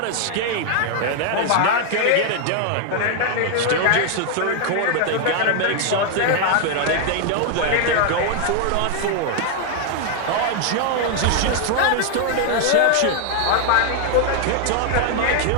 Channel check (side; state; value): both; different; correlation 0.00